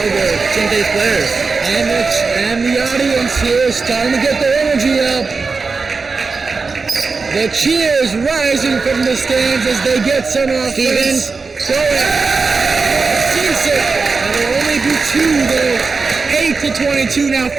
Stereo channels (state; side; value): quieter; left; 4.5 dB